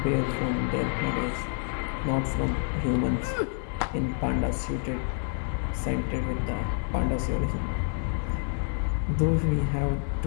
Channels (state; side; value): silent; right; 59 dB below the other